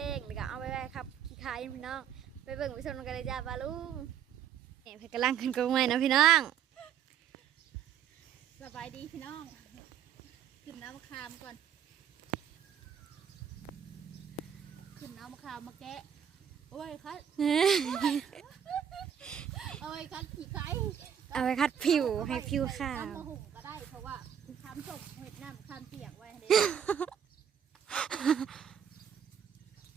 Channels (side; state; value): left; quieter; 8.7 dB